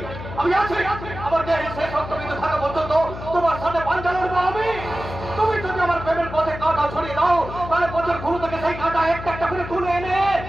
আমি আছি, আমার দেহে শেষ রক্তবিন্দু থাকা পর্যন্ত তোমার সাথে পাঞ্জা লড়বো আমি। তুমি যদি আমার প্রেমের পথে কাঁটা ছড়িয়ে দাও, তাহলে পথের ঘুরু থেকে সেই কাঁটা একটা একটা করে তুলে এনে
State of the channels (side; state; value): left; noise; hum, 11 dB below the sound